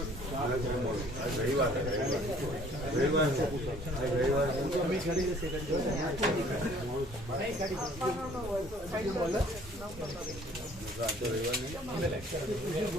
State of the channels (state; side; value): normal; both; correlation 0.56